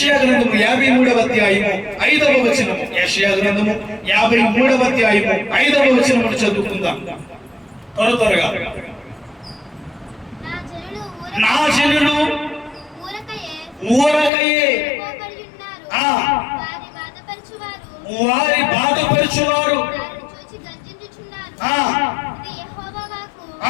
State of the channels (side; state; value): right; drops out; at 14.3 s